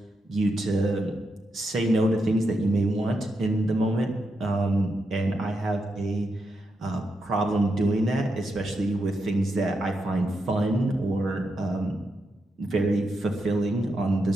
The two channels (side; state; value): both; normal; correlation 0.84